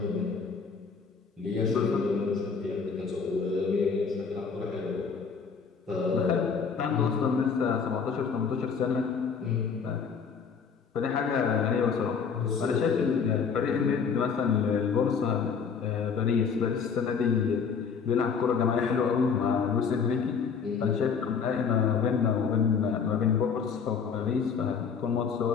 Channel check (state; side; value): quieter; right; 6.0 dB